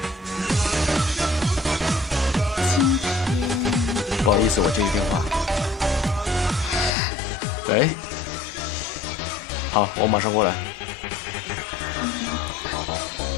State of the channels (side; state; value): right; drops out; at 6.9 s